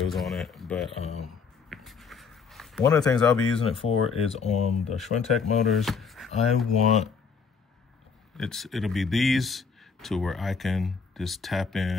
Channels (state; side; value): quieter; right; 5.6 dB